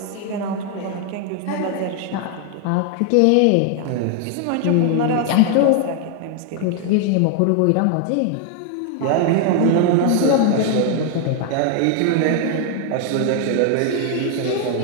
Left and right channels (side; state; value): both; different; correlation 0.00